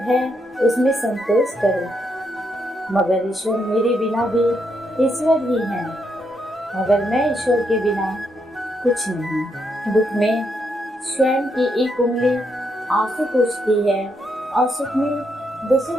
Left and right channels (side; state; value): both; normal; correlation 0.78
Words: है उसमें संतोष करो। मगर ईश्वर मेरे बिना भी ईश्वर ही है, मगर मैं ईश्वर के बिना कुछ नहीं। दुख में स्वयं की एक उंगली आंसू पोंछती है और सुख में 10